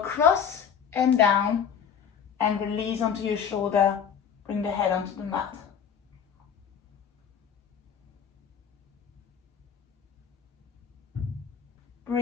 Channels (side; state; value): right; quieter; 7.5 dB